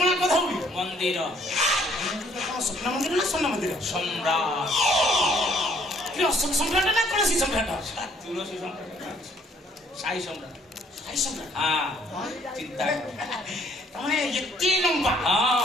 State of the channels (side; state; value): both; normal; correlation 0.63